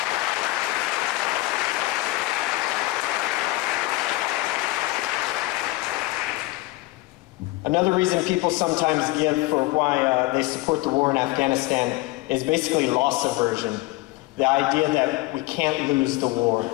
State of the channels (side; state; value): right; quieter; 20.2 dB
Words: Another reason people sometimes give for why they support the war in Afghanistan is basically loss aversion. The idea that we can't lose the war.